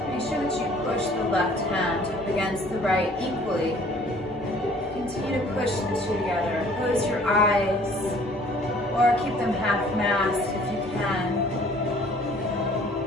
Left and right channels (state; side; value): normal; both; correlation 0.55